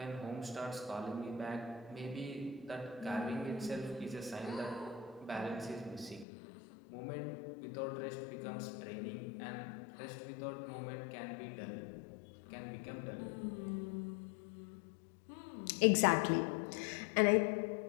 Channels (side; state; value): right; drops out; at 6.2 s